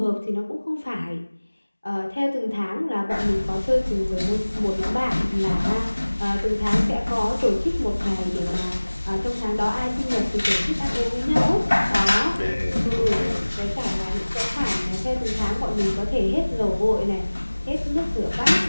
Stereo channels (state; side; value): inverted; both; correlation -1.00